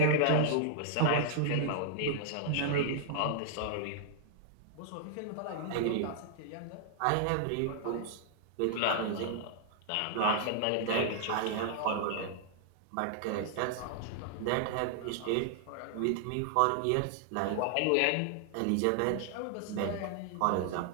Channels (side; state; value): both; different; correlation -0.01